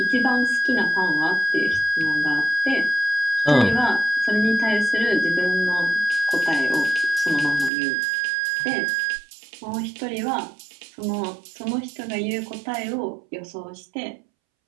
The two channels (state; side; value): drops out; left; at 7.7 s